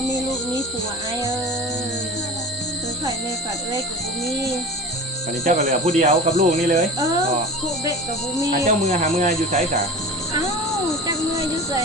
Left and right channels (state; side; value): normal; both; correlation 0.33